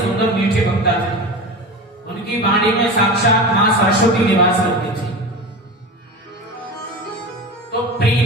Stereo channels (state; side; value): normal; both; correlation 0.29